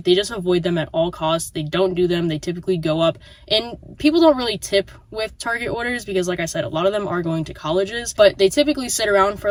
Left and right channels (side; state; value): both; identical; correlation 1.00